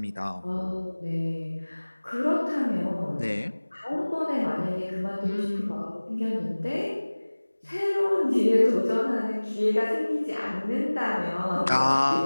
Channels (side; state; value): both; inverted; correlation -1.00